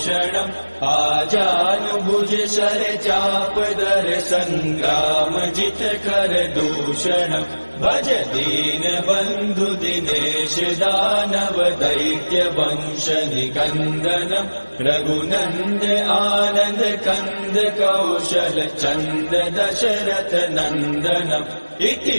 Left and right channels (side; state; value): both; inverted; correlation -1.00